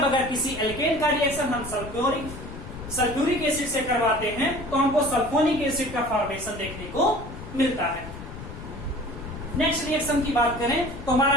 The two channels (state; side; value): noise; left; rumble, 12 dB below the sound